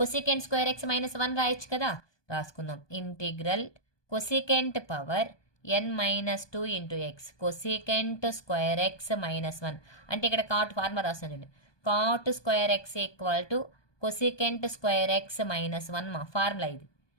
స్క్వేర్ ఎక్స్ -1 రాయొచ్చు కదా, రాసుకుందాం. Integral cosecant power N-2 into x cosecant square x -1 అంటే ఇక్కడ కాట్ ఫార్ములా రాస్తాను చూడండి. Cot square x equal to cosecant square x -1 మా ఫార్ములా ఇది.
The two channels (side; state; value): right; late; 1.2 ms